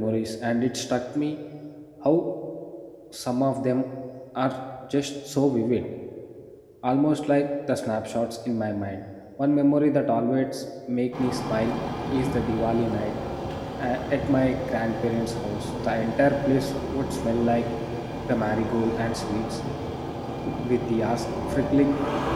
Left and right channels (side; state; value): both; identical; correlation 1.00